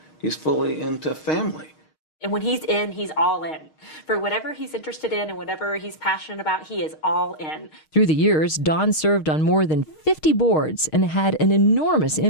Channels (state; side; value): late; right; 6.4 ms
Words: He's fully into family. And when he's in, he's all in. For whatever he's interested in and whatever he's passionate about, he is all in. Through the years, Don served on more than 50 boards and had an enormous